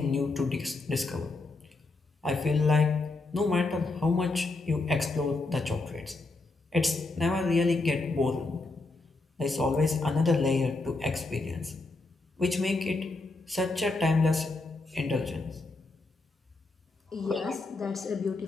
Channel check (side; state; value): right; quieter; 3.4 dB